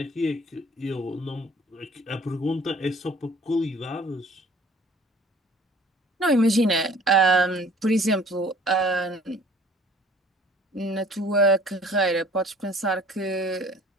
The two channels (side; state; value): both; normal; correlation 0.53